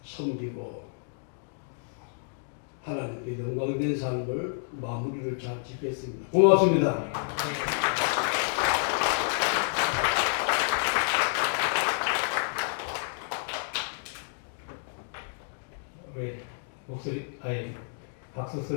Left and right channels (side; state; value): right; silent; digital silence